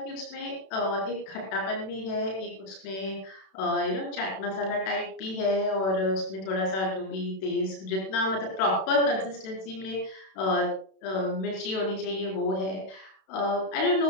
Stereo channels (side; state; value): right; late; 32 ms